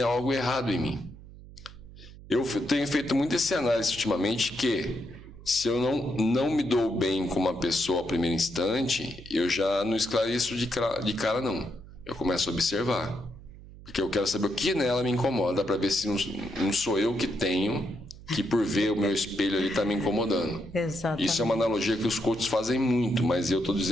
algo errado em mim. Eu tenho feito muito esse análise ultimamente, que se eu não me dou bem com uma pessoa ao primeiro instante, eu já não esclareço de cara não. Eu começo a observar. Porque eu quero saber o que nela me incomoda, para ver se não sou eu que tenho, que por ver o meu espelho ali está me incomodando. Exatamente. Isso é uma analogia que os coaches fazem muito, mas eu estou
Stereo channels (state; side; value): noise; right; hum, 18 dB below the sound